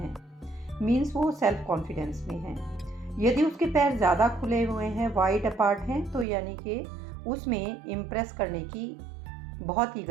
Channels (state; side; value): drops out; left; at 6.2 s